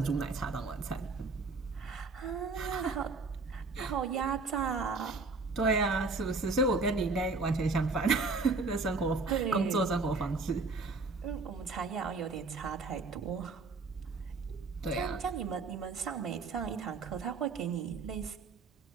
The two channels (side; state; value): left; quieter; 3.9 dB